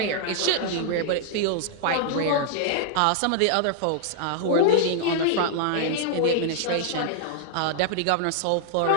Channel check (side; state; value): both; different; correlation -0.01